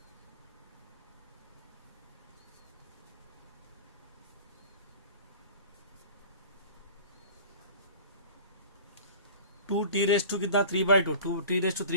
टू टी रेज टू कितना, 3/2. 2t raise to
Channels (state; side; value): inverted; both; correlation -0.41